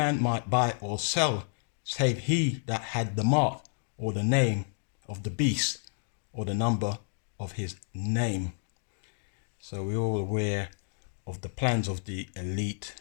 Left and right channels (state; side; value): silent; right; digital silence